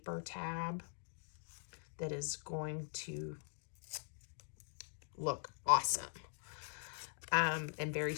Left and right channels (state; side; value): silent; right; digital silence